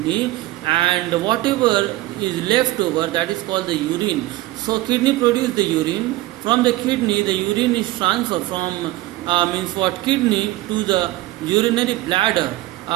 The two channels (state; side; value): quieter; left; 17.5 dB